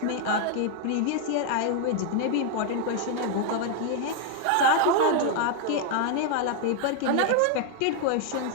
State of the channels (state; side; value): different; both; correlation 0.00